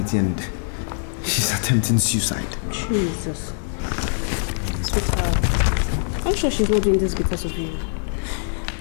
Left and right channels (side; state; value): right; silent; digital silence